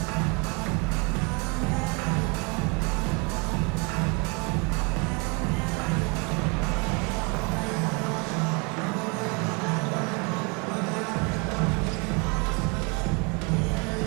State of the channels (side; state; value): left; quieter; 32.0 dB